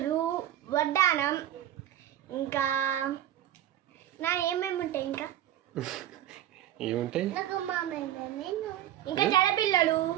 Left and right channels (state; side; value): quieter; left; 12.1 dB